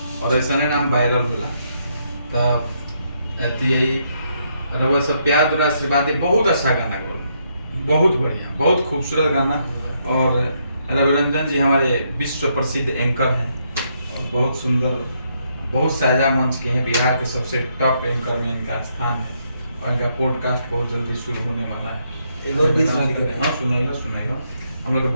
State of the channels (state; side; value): inverted; both; correlation -0.76